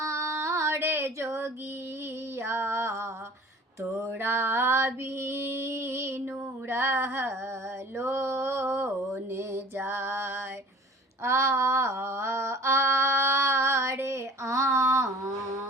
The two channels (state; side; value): normal; both; correlation 0.46